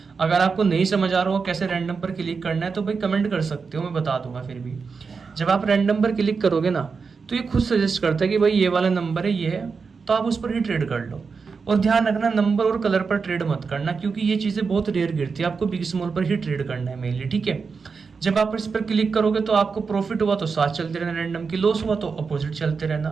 अगर आपको नहीं समझ आ रहा हो कैसे रैंडम पर क्लिक करना है तो भाई कमेंट कर सकते हो, मैं बता दूंगा। फिर भी जब आप रैंडम पर क्लिक करोगे ना, तो ये खुद सजेस्ट करता है कि भाई ये वाला नंबर है, ये है, तो आप उस पर ही ट्रेड कर लो। और ध्यान रखना, नंबर और कलर पर ट्रेड मत करना, क्योंकि ये चीज़ें बहुत रेयर गिरती है। आपको बिग स्मॉल पर ही ट्रेड करना है मेनली, ठीक है। जब आप इस पर क्लिक करोगे तो आपको प्रॉफिट हुआ तो साथ चलते रहना रैंडम की, लॉस हुआ तो अपोजिट चलते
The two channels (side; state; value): left; quieter; 5.1 dB